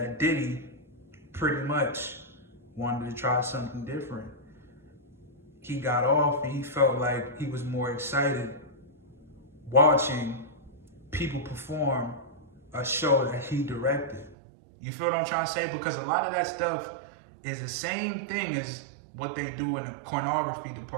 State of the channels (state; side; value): drops out; left; at 14.4 s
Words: Diddy pretty much wanted to try something different. He got off and he felt like he was more excited watching people perform a show that he directed. You feel what I'm trying to say? Because a lot of that stuff is the same thing as what they do in the pornography